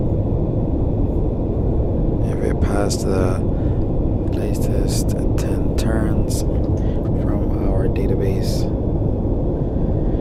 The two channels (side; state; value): both; identical; correlation 1.00